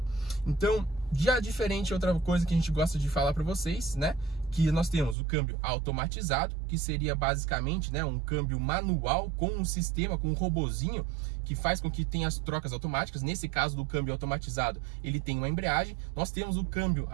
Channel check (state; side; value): drops out; left; at 5.2 s